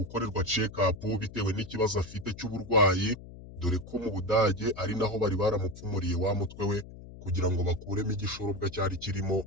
check up bitewe n'ikibazo afite cy'uburwayi, dore ko mu Budage ari naho bari baramupfumuriye wa mutwe we kugira ngo bakuremo igishorobwa cyari kirimo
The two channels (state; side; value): noise; left; hum, 15 dB below the sound